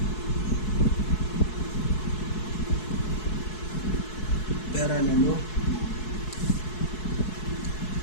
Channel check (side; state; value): right; late; 4.7 ms